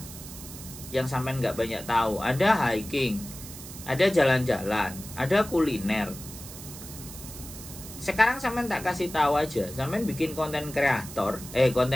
yang sampean nggak banyak tahu. Ada hiking, ada jalan-jalan, ada kuliner. sekarang sampean tak kasih tahu aja, sampean bikin konten kreator,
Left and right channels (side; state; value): right; noise; hiss, 13 dB below the sound